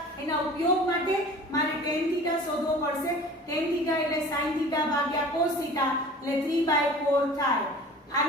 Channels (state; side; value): normal; both; correlation 0.42